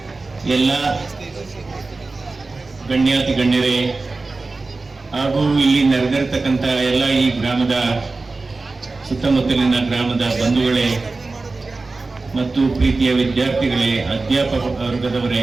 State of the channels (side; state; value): left; quieter; 3.6 dB